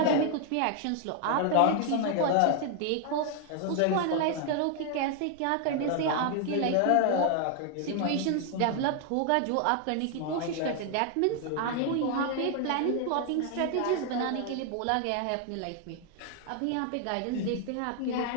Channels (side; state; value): both; different; correlation 0.00